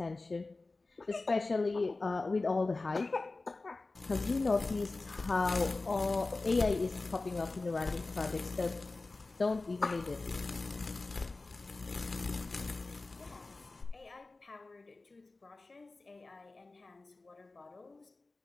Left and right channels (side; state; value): right; quieter; 3.4 dB